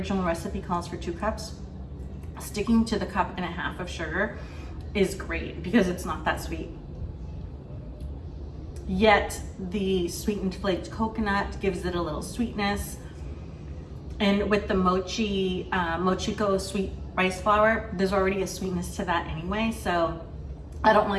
recipe calls for 2 cups. Sticking to the 1.5 cups of sugar is great because it's not that sweet. Yet the sweetened flaked coconut gives it a little sweetness. And with the mochi, Mochiko Sweet Rice Flour, there's already a sweetness to that anyway. So I don't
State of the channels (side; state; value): both; identical; correlation 1.00